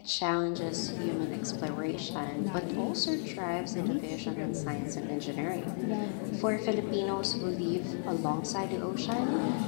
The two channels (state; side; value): silent; right; digital silence